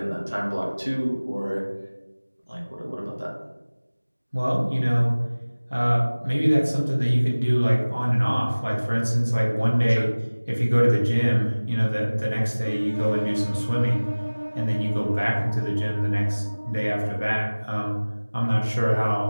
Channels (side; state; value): both; inverted; correlation -1.00